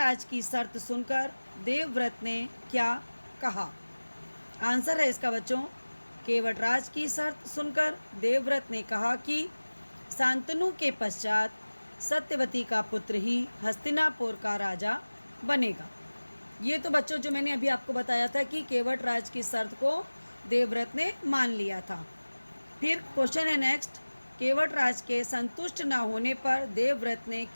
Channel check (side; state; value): both; inverted; correlation -1.00